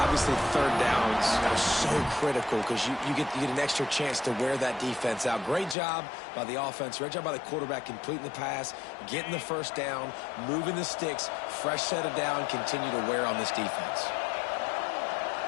Obviously, 3rd downs are so critical because you get an extra chance to wear that defense out. Great job by the offense. Great job by the quarterback completing the pass, getting the 1st down, moving the sticks, fresh set of down, continue to wear on this defense.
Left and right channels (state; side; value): drops out; right; at 5.8 s